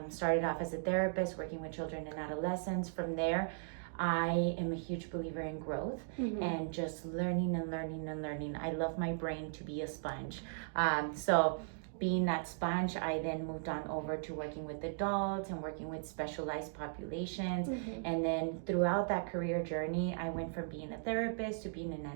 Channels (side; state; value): left; silent; digital silence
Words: Started off as a therapist, working with children and adolescents. From there, I am a huge believer in growth and just learning and learning and learning. I love my brain to be a sponge. So being that sponge, I then moved on over to working with adults and working with specialized populations. And then throughout that career journey, I went from being a therapist to being an